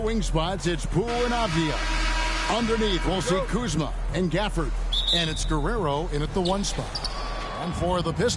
spots, it's Poole and Avdia. Underneath, we'll see Kuzma and Gafford. And it's Guerrero in at the 1 spot. And for the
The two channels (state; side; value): identical; both; correlation 1.00